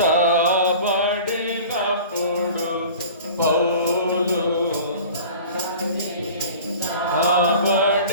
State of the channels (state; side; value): inverted; both; correlation -0.42